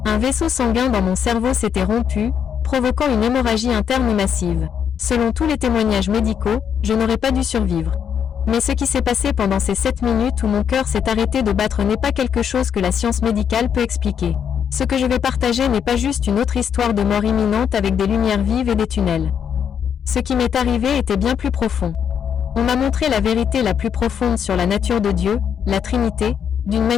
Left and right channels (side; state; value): right; quieter; 8.0 dB